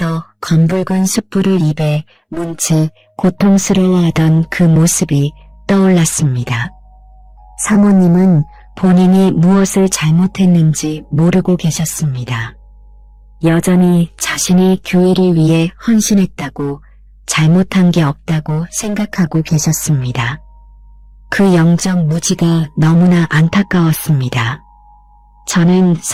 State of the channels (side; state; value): both; identical; correlation 1.00